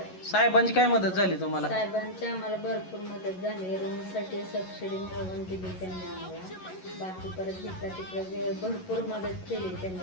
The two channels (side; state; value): right; late; 11 ms